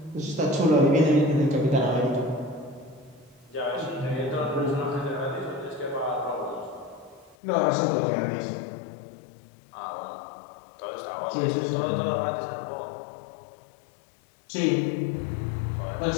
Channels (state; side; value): drops out; right; at 7.4 s